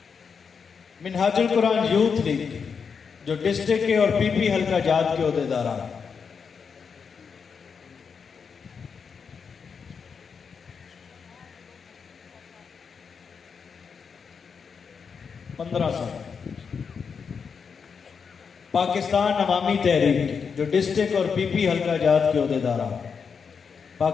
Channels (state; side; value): quieter; right; 6.0 dB